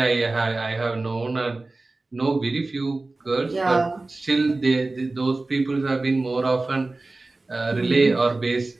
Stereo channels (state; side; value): quieter; left; 3.2 dB